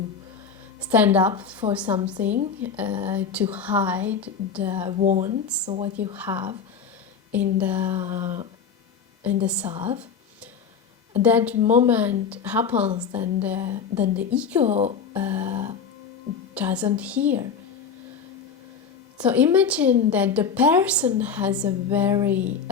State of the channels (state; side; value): quieter; right; 6.2 dB